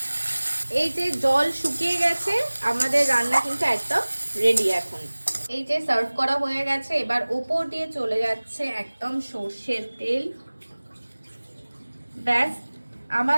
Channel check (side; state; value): both; inverted; correlation -1.00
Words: এই যে জল শুকিয়ে গেছে, আমাদের রান্না কিন্তু একদম রেডি। এখন এই যে সার্ভ করা হয়ে গেছে, এবার ওপর দিয়ে চলে যাচ্ছে একদম সর্ষের তেল। ব্যাস,